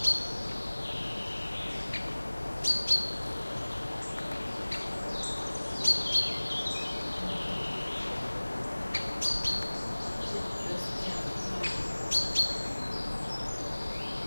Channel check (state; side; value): inverted; both; correlation -1.00